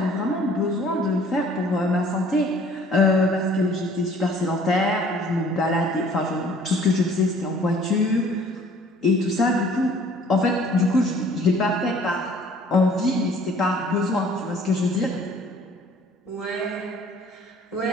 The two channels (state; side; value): normal; both; correlation 0.55